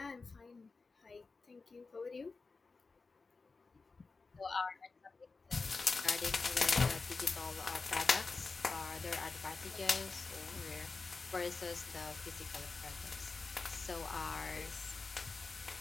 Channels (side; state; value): right; quieter; 4.1 dB